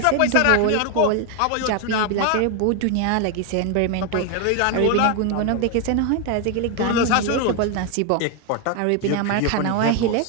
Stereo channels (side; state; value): both; different; correlation 0.01